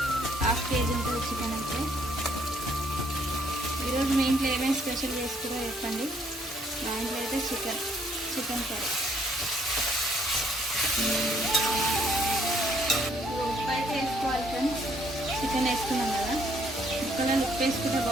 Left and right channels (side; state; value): both; normal; correlation 0.67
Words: 1/2 kg ఉంటుంది చికెన్ అయితే. ఈరోజు మీ ఇంట్లో ఏమేమి స్పెషల్ చేసుకురో చెప్పండి. మా ఇంట్లో అయితే చికెన్ కర్రీ. ఉప్పు అయితే వేసుకోవాలి ఫ్రెండ్స్. చికెన్ వేసుకున్నాం కదా, ముక్కలలో ఉప్పు వేసుకుంటే